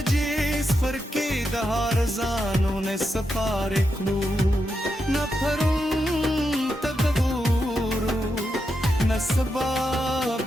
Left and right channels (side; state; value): both; normal; correlation 0.85